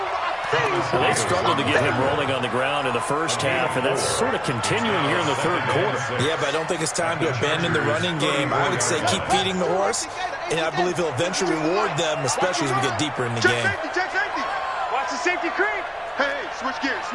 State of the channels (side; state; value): both; identical; correlation 1.00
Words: they struggled to get him rolling on the ground in the first half, and that's sort of continuing here in the third quarter. Yeah, but I don't think it's time to abandon the running game. I would say keep feeding the horse, and I believe he'll eventually reward them, especially as we get deeper in the game. Check safety. Watch the safety creep. Hey, switch gears,